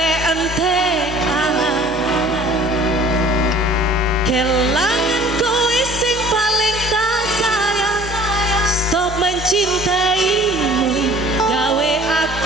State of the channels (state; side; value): normal; both; correlation 0.50